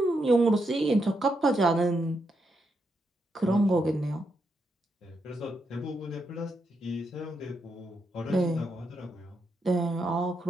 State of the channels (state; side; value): normal; both; correlation 0.82